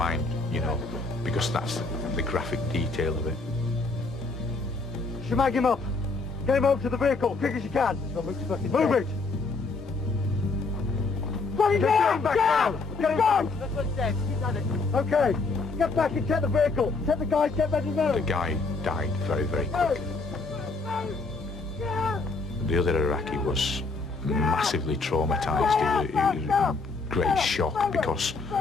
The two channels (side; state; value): right; quieter; 3.8 dB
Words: you know, because that's the graphic detail of it. Schmag him up! Get him over to the vehicle, quick as you can! Move it! Get him back down! Get him back! That's what he said, he's done it. Okay, get back and check the vehicle. Check the guys, get ready to move. The guy died very, very quick. The other Iraqi was massively traumatised. He was in great shock because